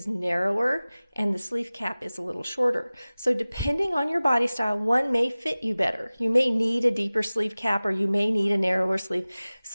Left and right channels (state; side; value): inverted; both; correlation -0.98